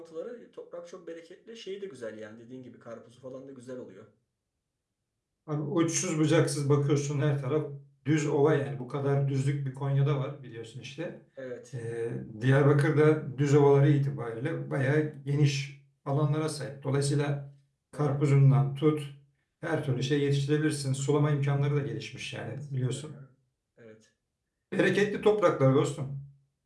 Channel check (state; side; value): identical; both; correlation 1.00